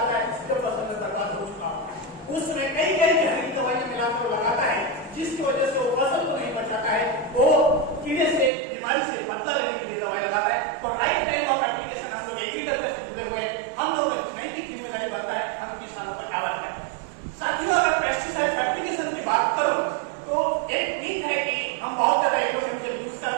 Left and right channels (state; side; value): drops out; left; at 8.5 s